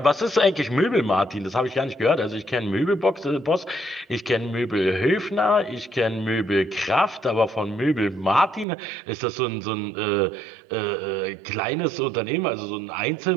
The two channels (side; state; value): left; drops out; at 8.7 s